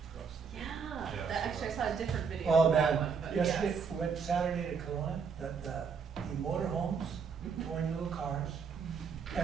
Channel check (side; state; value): left; quieter; 5.9 dB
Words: across the. Yeah, Yeah. that, actually I saw a different video Oh, of that man, one, but yesterday, yes. we went Saturday to Kelowna, the motorhomes, towing little cars,